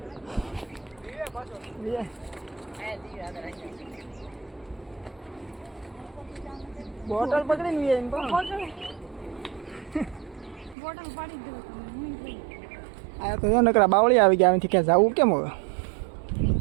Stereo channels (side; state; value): left; drops out; at 10.8 s